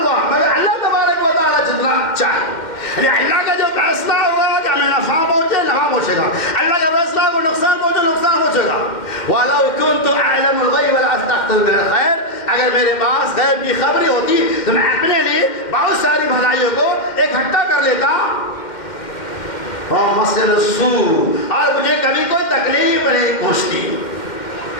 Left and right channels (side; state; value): right; late; 2.1 ms